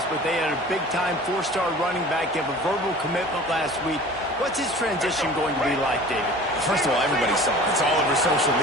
but they had a big-time 4-star running back give a verbal commitment last week. What's his transition going to be like, David? First of all, everybody saw it. It's all over social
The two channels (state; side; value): normal; both; correlation 0.43